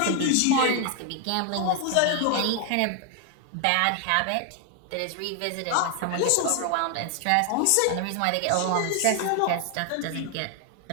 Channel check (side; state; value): both; different; correlation 0.00